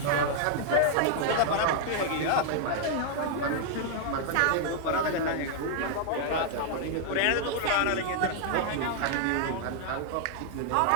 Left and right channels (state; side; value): different; both; correlation 0.00